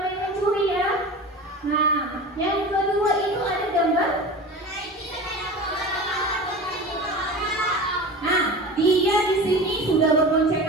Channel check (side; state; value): both; normal; correlation 0.33